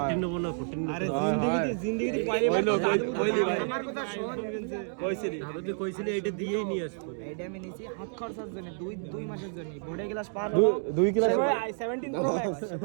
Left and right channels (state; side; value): silent; left; 58 dB below the other